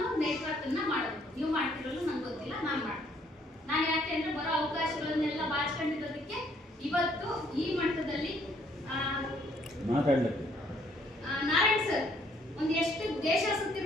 ನೆಟ್ವರ್ಕ್ ಅನ್ನ ಮಾಡಬೇಕು? ನೀವು ಮಾಡ್ತಿರಲ್ಲ ನಂಗೆ ಗೊತ್ತಿಲ್ಲ, ನಾನು ಮಾಡ್ತೀನಿ. ನಾನು ಯಾಕೆ ಅಂದ್ರೆ ಬರೋ ಅವಕಾಶಗಳನ್ನೆಲ್ಲ ಬಾಚಿಕೊಂಡಿರೋದಕ್ಕೆ ಇವತ್ತು ಈ ಮಟ್ಟದಲ್ಲಿ ಮಾತಾಡಲಿಕ್ಕೆ ನಾರಾಯಣ್ ಸರ್ ಒಂದು ಎಷ್ಟು ದೇಶ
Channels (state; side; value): normal; both; correlation 0.66